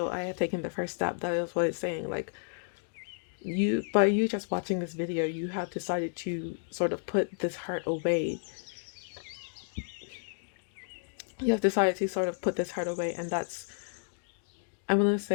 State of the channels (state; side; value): silent; right; digital silence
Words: I have taken the first step. That is what it's saying. Like, by you just watching this video, you have decided to sort of put this hurt away. You have decided to sort of put this hurt away, and that's, I want to